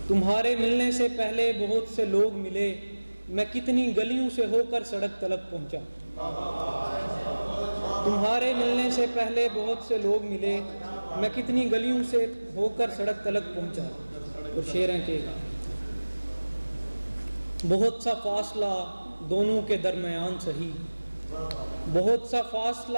تمہارے ملنے سے پہلے بہت سے لوگ ملے، میں کتنی گلیوں سے ہو کر سڑک تلک پہنچا۔ تمہارے ملنے سے پہلے بہت سے لوگ ملے، میں کتنی گلیوں سے ہو کر سڑک تلک پہنچا۔ اور شعر ہیں کہ بہت سا فاصلہ دونوں کے درمیان سہی، بہت سا فاصلہ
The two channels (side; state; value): both; inverted; correlation -1.00